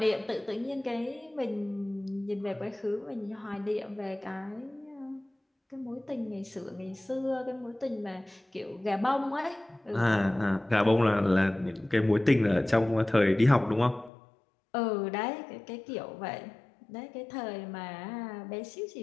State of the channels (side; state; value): right; drops out; at 14.1 s